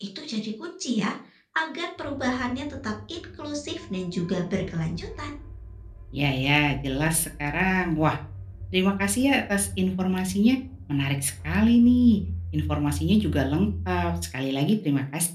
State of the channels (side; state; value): both; identical; correlation 1.00